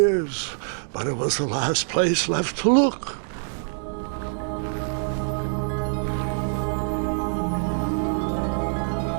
but it was the last place left to look.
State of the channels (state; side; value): silent; left; 62 dB below the other